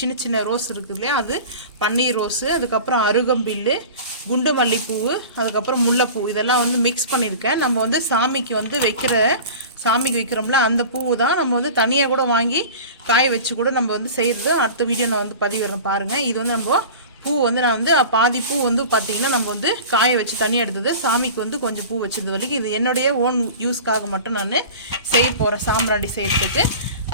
சின்ன ரோஸ் இருக்குது இல்லையா, அது பன்னீர் ரோஸு, அதுக்கப்புறம் அருகம்பில்லு, குண்டு மல்லிப்பூவு, அதுக்கப்புறம் முல்லைப்பூ, இதெல்லாம் வந்து மிக்ஸ் பண்ணியிருக்கேன். நம்ம வந்து சாமிக்கு வந்து சாமிக்கு வைக்கிறோம்ல அந்த பூவு தான் நம்ம வந்து தனியாக கூட வாங்கி காய வச்சு கூட நம்ம வந்து செய்கிறது. அடுத்த வீடியோ நான் வந்து பதிவிடுறேன் பாருங்கள். இது வந்து நம்ம பூ வந்து நான் வந்து பாதி பூ வந்து பார்த்தீங்கன்னா நம்ம வந்து காய வச்சு தனியாக எடுத்தது, சாமிக்கு வந்து கொஞ்சம் பூ வச்சது வரைக்கும். இது என்னுடைய ஓன் யூஸ்க்காக மட்டும் நான் செய்ய போகிறேன் சாம்பிராண்டி செய்கிறதுக்கு.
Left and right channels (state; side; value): inverted; both; correlation -0.37